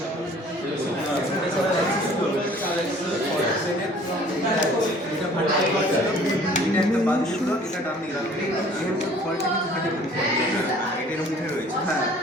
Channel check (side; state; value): both; normal; correlation 0.52